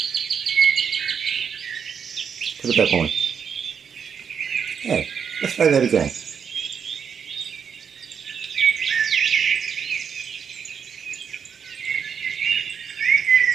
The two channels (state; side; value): quieter; left; 7.0 dB